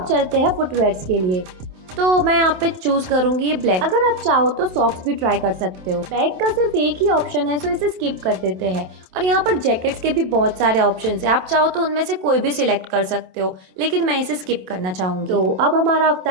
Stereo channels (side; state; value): left; late; 27 ms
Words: चलते हैं फुटवेयर्स के लिए, तो मैं यहाँ पे चूज करूंगी ये ब्लैक। अगर आप चाहो तो सॉक्स भी ट्राई कर सकते हो। बैग का सिर्फ एक ही ऑप्शन है, सो इसे स्किप कर देते हैं। और यहाँ पर जैकेट्स के भी बहुत सारे ऑप्शन है, आप चाहो तो उनमें से कोई भी सिलेक्ट कर सकते हो, लेकिन मैं इसे स्किप करना चाहूंगी। तो अब हमारा